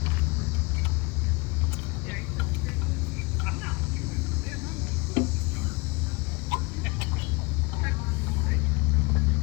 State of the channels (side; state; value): right; quieter; 26.6 dB